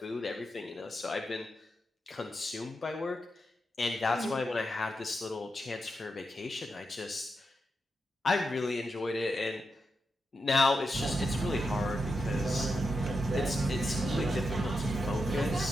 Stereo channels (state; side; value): normal; both; correlation 0.86